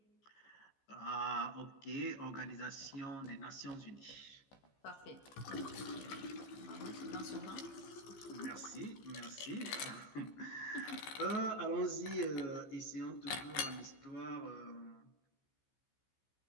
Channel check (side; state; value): right; late; 15 ms